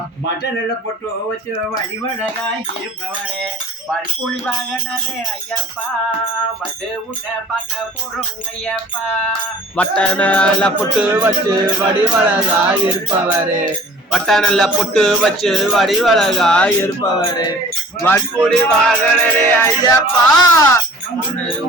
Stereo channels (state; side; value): normal; both; correlation 0.47